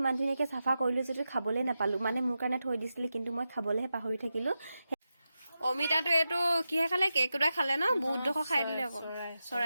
ইমান ধুনীয়াকৈ চাফা কৰিলোঁ যদিও খাবলৈ নাপালোঁ, মানে মোৰ কাৰণে থৈ দিছিলে, কিন্তু মই খাবলৈহে পাহৰি থাকিলোঁ। অমিতাটো এইটো কিহে খালে? কেকুৰাই খালে ন? বহুত ডোখৰ খাই দিলে আকৌ।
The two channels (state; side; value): inverted; both; correlation -0.91